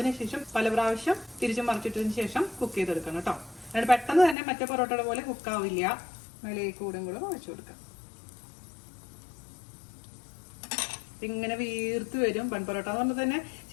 പല പ്രാവശ്യം തിരിച്ചു മറിച്ചിട്ടതിന് ശേഷം കുക്ക് ചെയ്തെടുക്കണം കേട്ടോ. അതിന് പെട്ടെന്ന് തന്നെ മറ്റേ പൊറോട്ടയുടെ പോലെ കുക്കാവില്ല. മേലേക്ക് കൂടെ കൂടെ ഒഴിച്ചു കൊടുക്കാം. ഇങ്ങനെ വീർത്ത് വരും. ബൺ പൊറോട്ട എന്ന് പറഞ്ഞാൽ തന്നെ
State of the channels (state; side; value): drops out; right; at 4.4 s